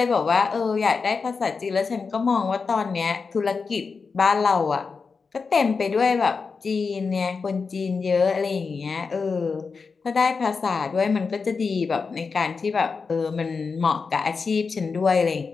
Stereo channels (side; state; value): right; quieter; 4.9 dB